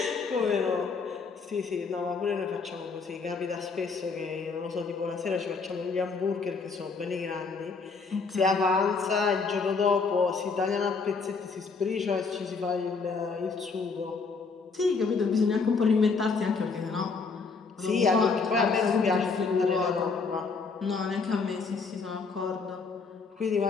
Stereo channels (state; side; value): quieter; right; 4.7 dB